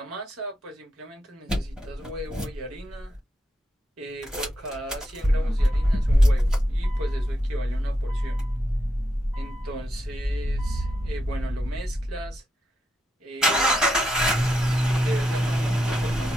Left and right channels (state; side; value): normal; both; correlation 0.85